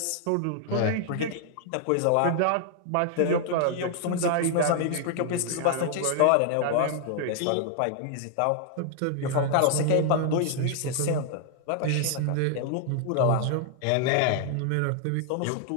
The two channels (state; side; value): different; both; correlation 0.00